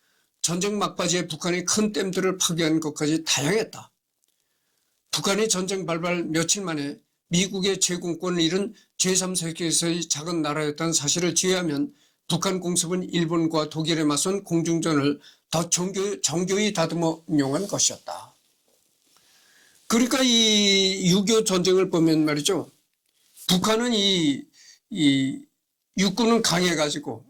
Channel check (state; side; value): identical; both; correlation 1.00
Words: 전쟁 막바지에 북한이 큰 댐들을 파괴하는 것까지 다양했다. 북한이 전쟁 발발 며칠 만에 미국의 제공권을 잃은 제3세계에서의 작은 나라였다는 사실을 제외하면 북한 공습은 일본과 독일에 맞선 공중전을 더 정교히 다듬어 운용한 것이었다. 그러니까 이 6.25 전쟁을 보면 말이죠. 북한은 이 육군은 강해가지고,